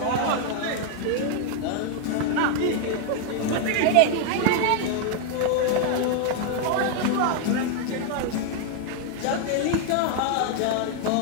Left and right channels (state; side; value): different; both; correlation 0.00